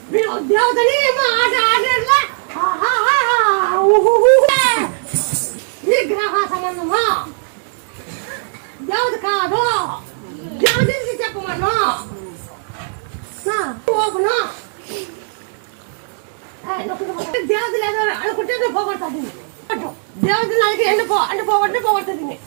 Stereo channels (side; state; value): left; silent; 67 dB below the other